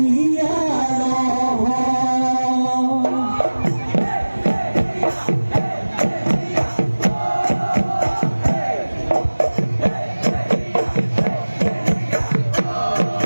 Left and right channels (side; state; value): both; inverted; correlation -1.00